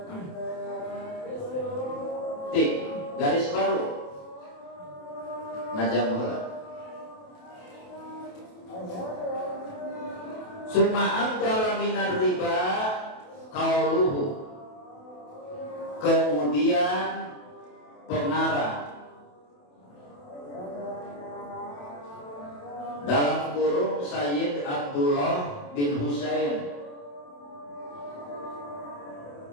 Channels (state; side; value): late; right; 28 ms